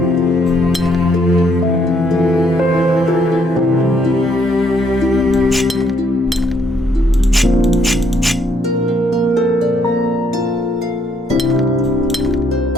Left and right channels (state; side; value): normal; both; correlation 0.70